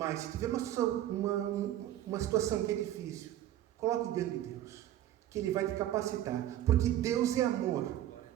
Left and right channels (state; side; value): quieter; left; 12.7 dB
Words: se tiver uma situação que é difícil, coloque diante de Deus, que Ele vai te capacitar. Porque Deus é amor.